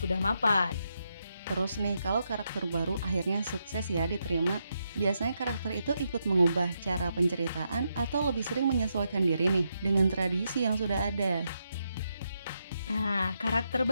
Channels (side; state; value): both; inverted; correlation -0.82